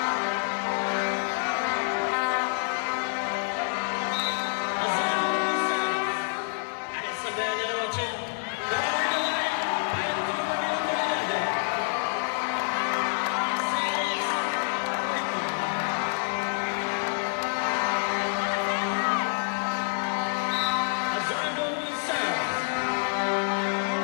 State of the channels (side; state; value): right; silent; 60 dB below the other